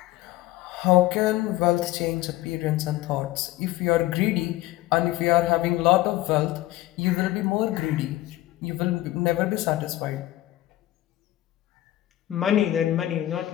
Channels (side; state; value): right; quieter; 15.8 dB